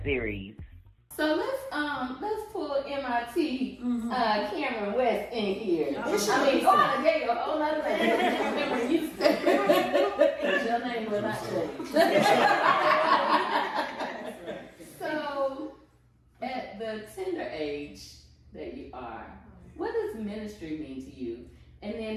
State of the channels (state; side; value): identical; both; correlation 1.00